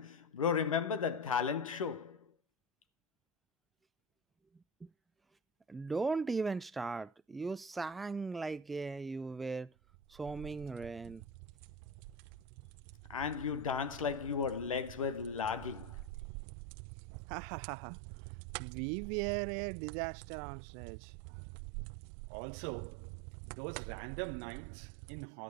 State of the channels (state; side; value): drops out; left; at 16.2 s